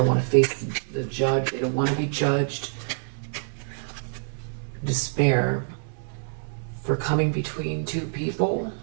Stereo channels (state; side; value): silent; left; digital silence